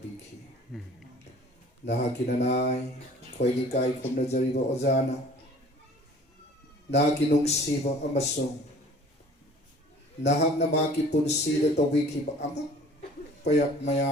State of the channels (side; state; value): both; normal; correlation 0.49